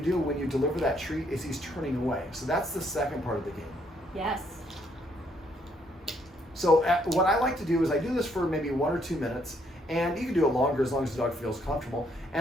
when you deliver that treat is he's turning away. So that's the second part of the game. Yes. So what I like to do is I do this for maybe 1 or 2 minutes. And you can do it longer as long as the dog feels comfortable.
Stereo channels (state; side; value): normal; both; correlation 0.70